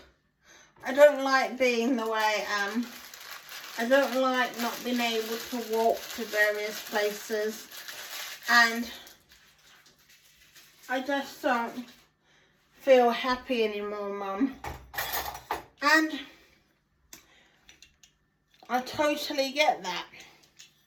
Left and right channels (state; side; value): identical; both; correlation 1.00